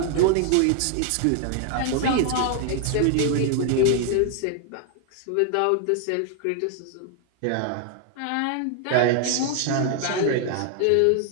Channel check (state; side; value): different; both; correlation 0.00